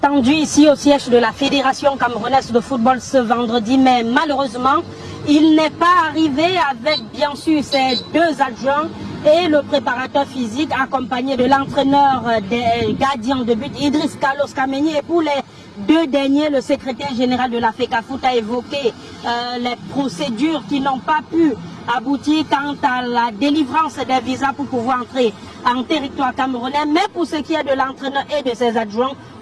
ici au siège de la Fédération camerounaise de football ce vendredi, mais malheureusement, il n'est pas arrivé avec bien sûr ses deux adjoints et le préparateur physique accompagné de l'entraîneur des gardiens de but Idriss Carlos Kameni. Et pour les deux derniers, le secrétaire général de la FECAFOOT a évoqué les procédures qui n'ont pas pu aboutir quant à la délivrance des visas pour pouvoir entrer en territoire camerounais. Mais pour ce qui est de l'entraîneur et de ses adjoints,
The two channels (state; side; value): identical; both; correlation 1.00